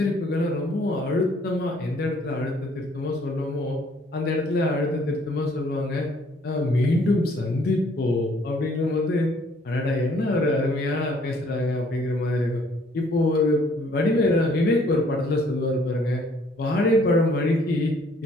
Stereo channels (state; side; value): normal; both; correlation 0.61